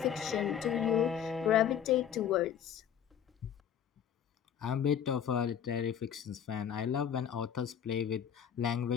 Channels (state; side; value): quieter; right; 8.8 dB